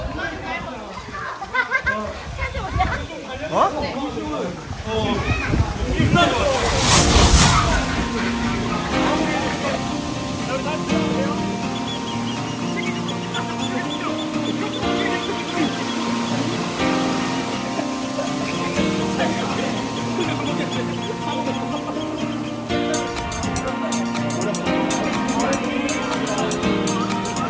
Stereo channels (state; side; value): identical; both; correlation 1.00